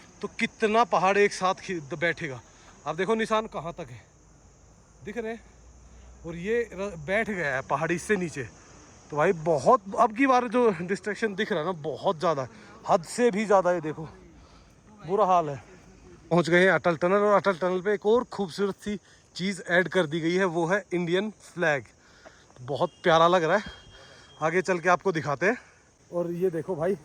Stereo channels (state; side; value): identical; both; correlation 1.00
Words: तो कितना पहाड़ एक साथ बैठेगा। आप देखो निशान कहाँ तक है, दिख रहे हैं, और ये बैठ गया है पहाड़ी से नीचे। तो भाई बहुत, अब की बार जो डिस्ट्रैक्शन दिख रहा है ना बहुत ज़्यादा, हद से भी ज़्यादा। ये देखो बुरा हाल है। पहुंच गए हैं अटल टनल, और अटल टनल पे एक और खूबसूरत सी चीज़ ऐड कर दी गई है, वो है इंडियन फ्लैग। बहुत प्यारा लग रहा है, आगे चल के आपको दिखाते हैं। और ये देखो भाई